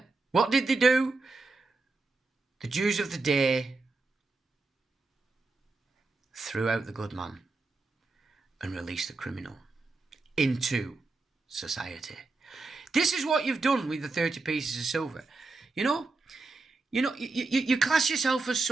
What did they do? The Jews of the day threw out the good man and released the criminal into society. This is what you've done with the 30 pieces of silver. You class yourself as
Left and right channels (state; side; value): quieter; left; 3.6 dB